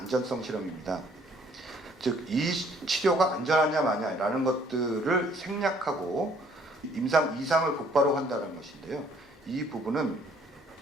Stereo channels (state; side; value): normal; both; correlation 0.61